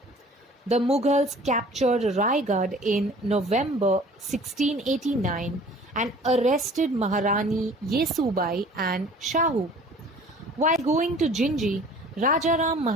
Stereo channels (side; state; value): both; normal; correlation 0.49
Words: The Mughals captured Raigad in November 1689 and arrested Maharani Yesubai and Shahu. While going to Jinji, Rajaram